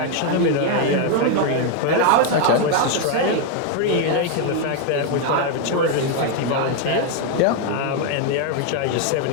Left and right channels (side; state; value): both; different; correlation 0.01